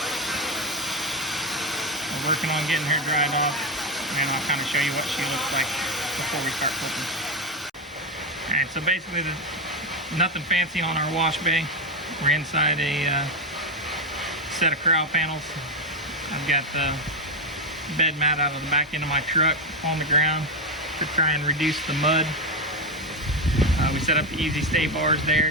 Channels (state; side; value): normal; both; correlation 0.09